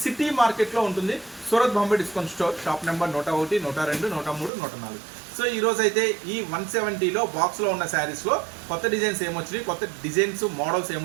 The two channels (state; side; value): drops out; left; at 4.5 s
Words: సిటీ మార్కెట్లో ఉంటుంది. Surat Bombay discount store, shop number 101, 102, 103, 104. So ఈరోజు అయితే ఈ 170లో బాక్స్లో ఉన్న శారీస్లో కొత్త డిజైన్స్ ఏమొచ్చినాయి, కొత్త డిజైన్స్ మోడల్స్